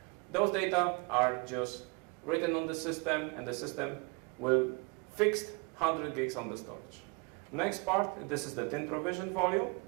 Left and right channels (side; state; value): left; quieter; 31.2 dB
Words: Those data are just written on the system, and the system will fix 100 gigs on the storage. Next part, this is the tin provision volume.